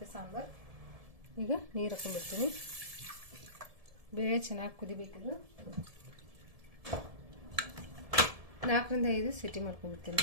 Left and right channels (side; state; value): left; late; 1.7 ms